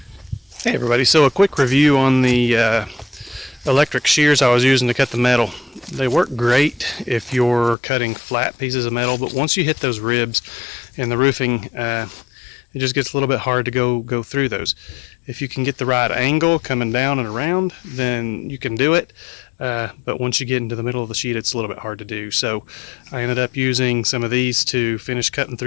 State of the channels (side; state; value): right; drops out; at 7.8 s